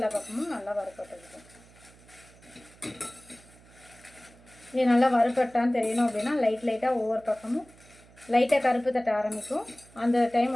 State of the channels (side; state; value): right; noise; hum, 25 dB below the sound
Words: பக்கமும் நல்லா வறுப்பட்டுருக்கும். இது நல்லா வறுப்பட்டான்னு தெரியணும் அப்படின்னா லைட்டாக ஒவ்வொரு பக்கமும் லைட்டாக கருப்பு தட்ட ஆரம்பிக்கும். அந்த டைம்